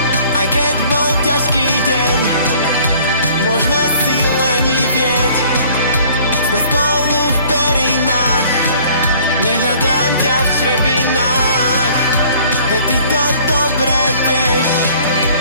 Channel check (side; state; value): both; inverted; correlation -0.55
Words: Aj keď bol ťažký deň, môžeme si lenivieť. Sme spolu v perinách, nehľadám ťa v črepinách. Veď ty to dobre vieš,